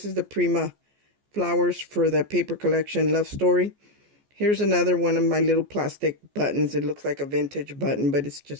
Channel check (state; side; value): late; left; 14 ms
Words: is the Prima flowers for the paper collection Love Story. Here's another one of my little plastic buttons. It looks like a vintage button, but it's